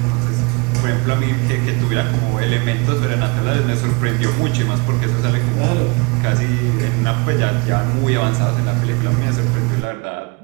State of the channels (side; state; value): left; quieter; 28.6 dB